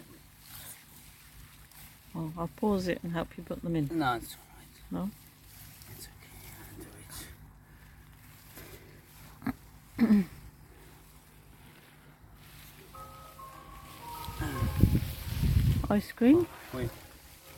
Oh, I'll pause it and help you put them in. No, it's alright. No? It's okay. I'll do it. Ice cream? Wait.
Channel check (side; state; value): both; identical; correlation 1.00